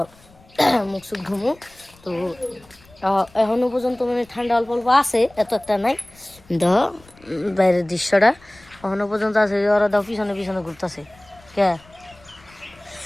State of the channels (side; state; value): left; noise; rumble, 27 dB below the sound